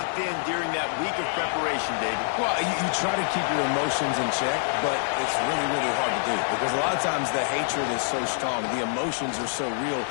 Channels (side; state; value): right; silent; digital silence